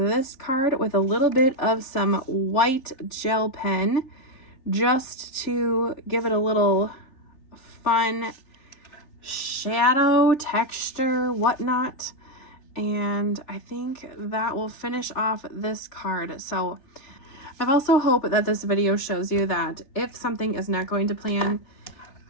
card with a little bit of some white gel pen just to give it a little fun shadow texture, whatnot. And I think that will finish off this card. So I've also hoped that this video shows you that if something is not going to plan,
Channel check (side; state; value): right; late; 3.7 ms